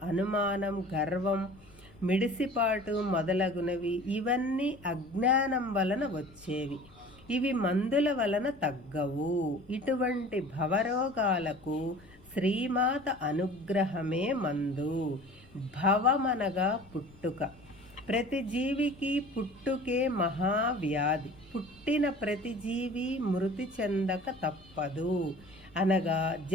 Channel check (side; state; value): left; noise; rumble, 25 dB below the sound